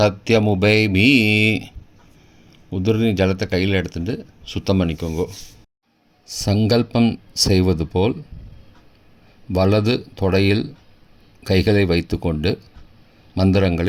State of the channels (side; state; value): both; identical; correlation 1.00